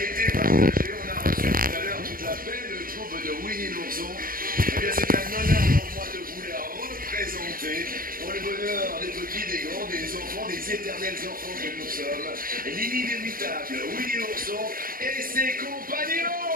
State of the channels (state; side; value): late; left; 0.41 ms